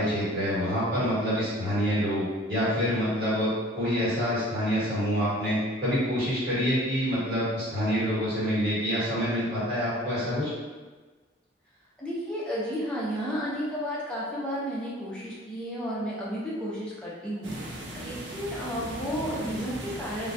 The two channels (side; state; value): both; normal; correlation 0.49